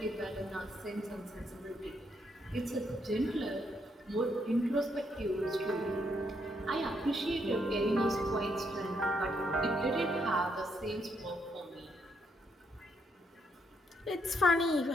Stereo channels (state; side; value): normal; both; correlation 0.75